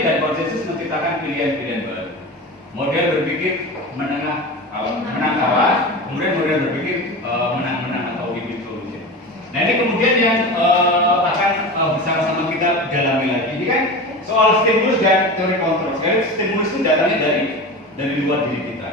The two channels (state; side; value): normal; both; correlation 0.28